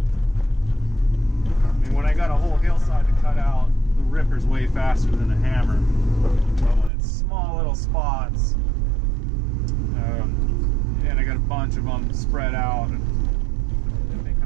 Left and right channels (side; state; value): left; drops out; at 6.9 s